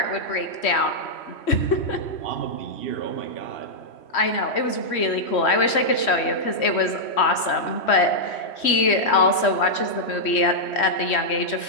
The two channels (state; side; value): late; right; 3.1 ms